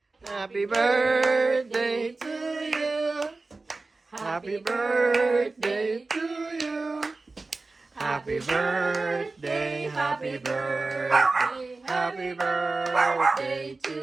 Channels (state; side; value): quieter; left; 3.5 dB